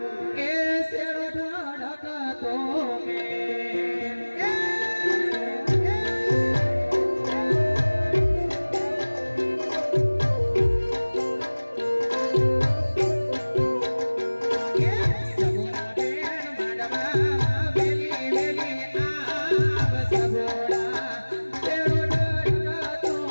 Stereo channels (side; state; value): both; inverted; correlation -1.00